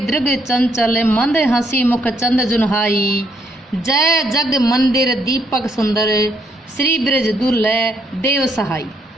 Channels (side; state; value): both; normal; correlation 0.73